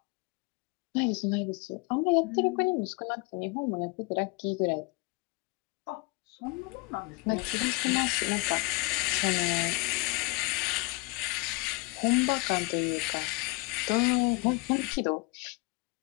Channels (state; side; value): quieter; right; 25.7 dB